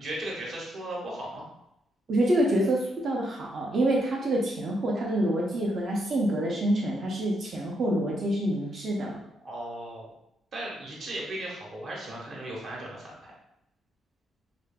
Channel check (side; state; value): both; normal; correlation 0.78